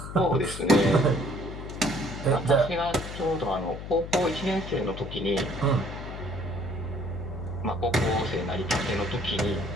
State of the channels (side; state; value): left; noise; hum, 9 dB below the sound